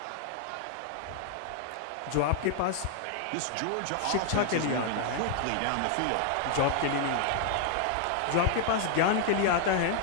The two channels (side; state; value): both; different; correlation 0.00